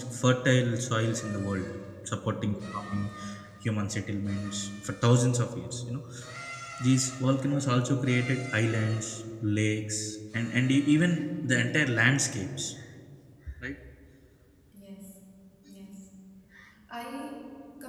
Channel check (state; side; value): identical; both; correlation 1.00